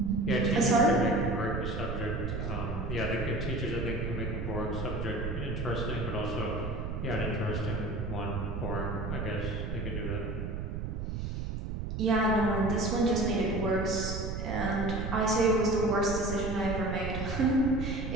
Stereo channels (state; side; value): noise; right; rumble, 4 dB below the sound